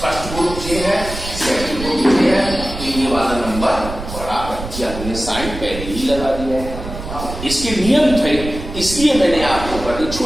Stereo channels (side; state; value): right; noise; rumble, 9 dB below the sound